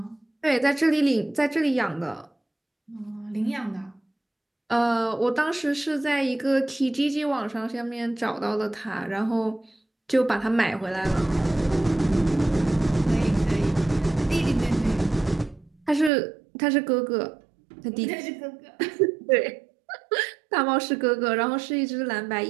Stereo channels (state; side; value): drops out; left; at 16.1 s